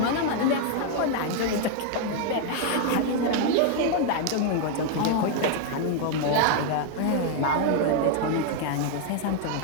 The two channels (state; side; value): different; both; correlation 0.00